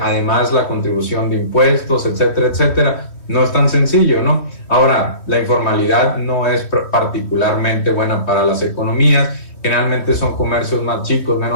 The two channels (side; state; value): right; late; 3.1 ms